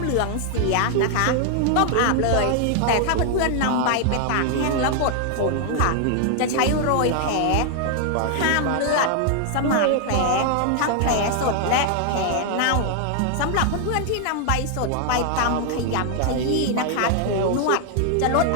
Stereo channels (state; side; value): different; both; correlation 0.00